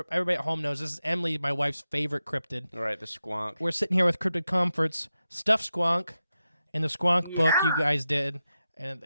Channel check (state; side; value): inverted; both; correlation -0.90